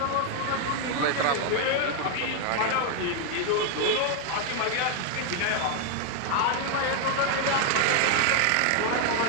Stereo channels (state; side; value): different; both; correlation 0.00